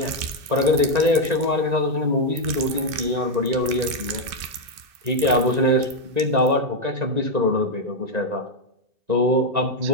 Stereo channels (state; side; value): late; left; 2.6 ms